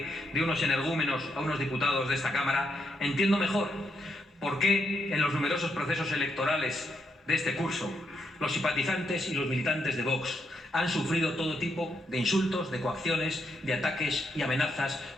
de unos energúmenos a unos diputados de esta Cámara, entiendo mejor por qué en los numerosos procesos electorales de este curso los simpatizantes y los militantes de Vox han sufrido todo tipo de insultos, de coacciones, de ataques y amenazas,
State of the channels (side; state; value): both; normal; correlation 0.79